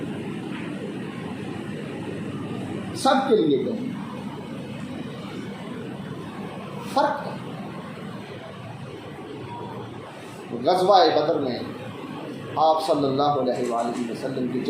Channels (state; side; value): identical; both; correlation 1.00